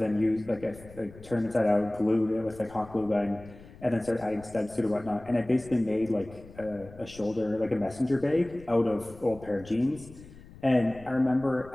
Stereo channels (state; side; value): noise; left; rumble, 19 dB below the sound